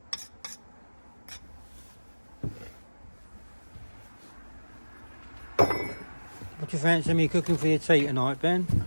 What do you fancy me cooking for your tea tonight, Ben?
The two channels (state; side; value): inverted; both; correlation -1.00